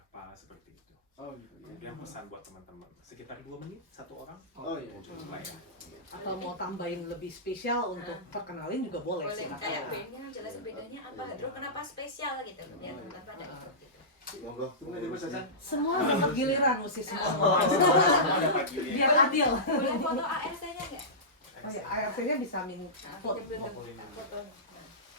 seperti itu. Oh gitu. Kemudian pesan buat teman-teman, sekitar 2 menit, 1 orang. Oh iya. Coba ya. Atau mau tambahin lebih spesial untuk perkenalin juga boleh sih. Boleh kayak bandnya jelasin bedanya apa, Hadro kenapa spesial gitu, biar teman-teman pada ikut gitu. Monggo. Semua dapat giliran mesti semua. Biar adil. Boleh foto ARC-nya nggak? Oh ya, ARC-nya bisa minta foto. Foto.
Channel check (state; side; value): normal; both; correlation -0.17